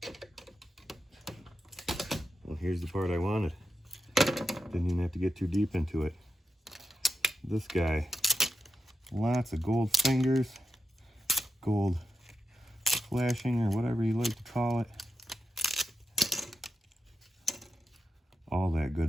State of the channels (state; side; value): normal; both; correlation 0.87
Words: Well, here's the part I wanted. Didn't even have to get too deep into it. This guy, lots of gold fingers, gold flashing, or whatever you like to call it. All that